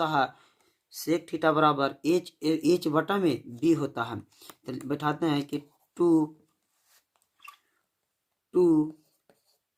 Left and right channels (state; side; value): identical; both; correlation 1.00